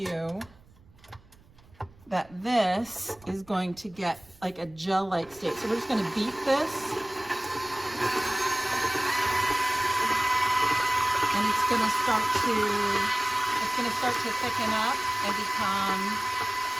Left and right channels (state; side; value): noise; right; rumble, 26 dB below the sound